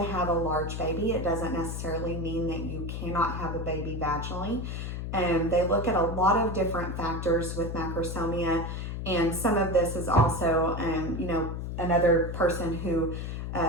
have a large baby, it doesn't necessarily mean that you cannot have a baby vaginally. They look at a lot of different factors with macrosomia, and some of this is also, another person who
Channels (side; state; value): left; noise; hum, 5 dB below the sound